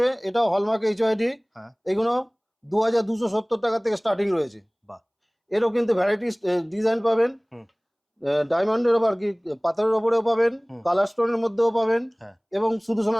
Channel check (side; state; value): both; identical; correlation 1.00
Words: এটাও হলমার্ক HYD। এগুলো 2,270 টাকা থেকে স্টার্টিং রয়েছে। এরও কিন্তু ভ্যারাইটি ডিজাইন পাবেন। ডায়মন্ডের ওপর কি পাথরের ওপরেও পাবেন, কালার স্টোনের মধ্যেও পাবেন এবং শুধু